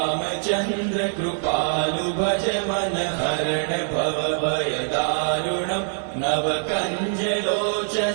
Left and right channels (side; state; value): left; silent; 56 dB below the other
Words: कृपालु भज मन हरण भव भय दारुणम नव कंज